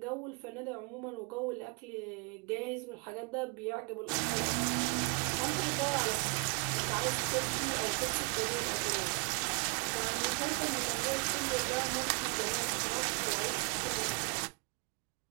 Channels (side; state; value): left; quieter; 33.0 dB